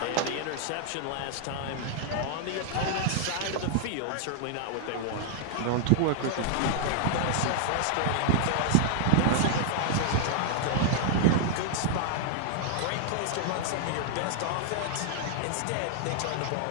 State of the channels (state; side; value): different; both; correlation -0.01